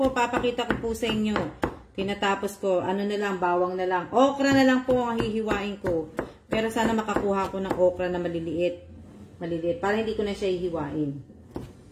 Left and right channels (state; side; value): identical; both; correlation 1.00